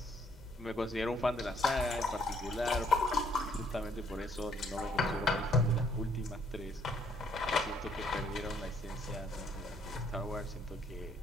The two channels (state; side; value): normal; both; correlation 0.66